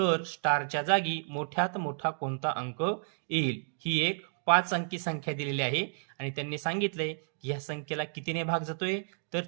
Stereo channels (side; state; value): left; silent; digital silence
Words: स्टारच्या जागी मोठ्यात मोठा कोणता अंक येईल? ही एक 5 अंकी संख्या दिलेली आहे आणि त्यांनी सांगितलंय की या संख्येला कितीने भाग जातोय? तर